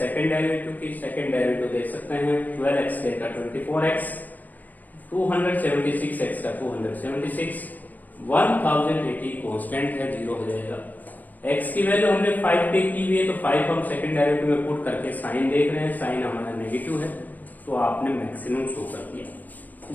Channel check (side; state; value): right; late; 0.082 ms